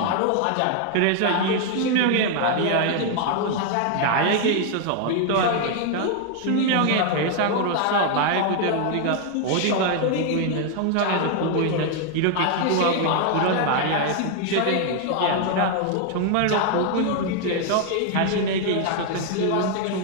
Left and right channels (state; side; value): different; both; correlation 0.00